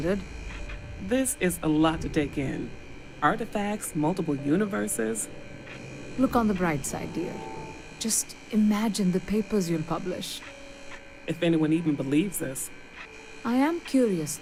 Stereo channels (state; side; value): identical; both; correlation 1.00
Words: This is a lot to take in. Artifacts, multiple universes. Look on the bright side, dear. Just imagine the papers you'll publish. If anyone even believes this. I am curious,